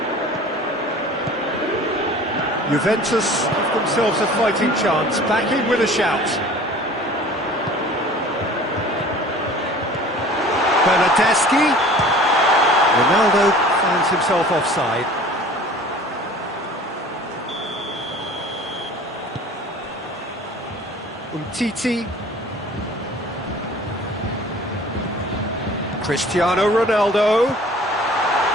Juventus have themselves a fighting chance, back in with a shout. Bernardeschi. Ronaldo finds himself offside. Umtiti. Cristiano Ronaldo.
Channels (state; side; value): normal; both; correlation 0.45